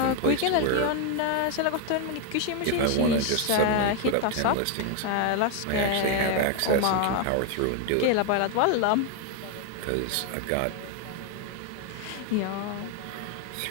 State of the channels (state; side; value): different; both; correlation 0.00